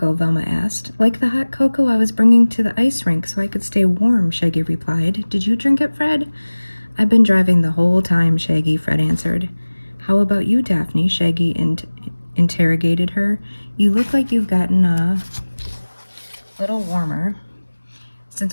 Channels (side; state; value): both; inverted; correlation -1.00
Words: Velma asked. "Like the hot cocoa I was bringing to the ice rink so I could stay warm," Shaggy replied. "Did you drink it, Fred?" "I've been driving the whole time, Shaggy," Fred answered. "How about you, Daphne?" Shaggy interrogated her. "You look like you've gotten a little warmer